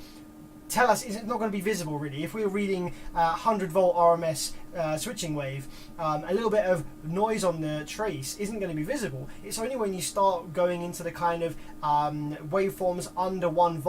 tell us, it's not going to be visible really. If we're reading 100 volt RMS switching wave, a little bit of noise on the trace isn't going to be visible. It's only when you start going into the kind of waveforms under 1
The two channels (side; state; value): both; identical; correlation 1.00